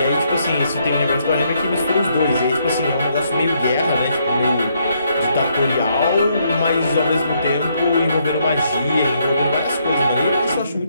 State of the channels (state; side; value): inverted; both; correlation -0.73